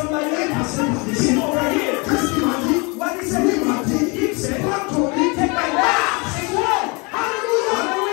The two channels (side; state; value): right; quieter; 29.4 dB